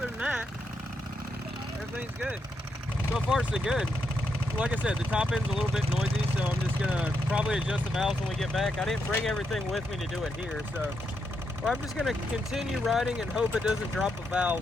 than that, everything's good. So far, so good. Like I said, the top end's a little bit noisy, so I'm just going to probably adjust the valves when we get back. I didn't bring everything with me to do it here, so I'm just going to continue riding and hope it doesn't drop a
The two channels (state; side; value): normal; both; correlation 0.81